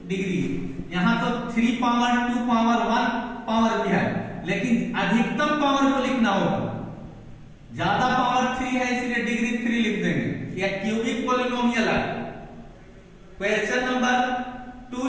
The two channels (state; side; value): identical; both; correlation 1.00